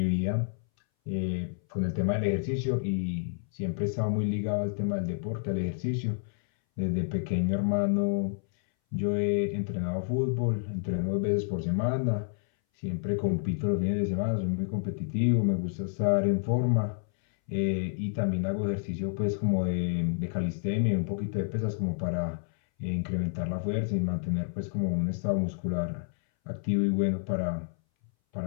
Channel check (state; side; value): silent; right; 58 dB below the other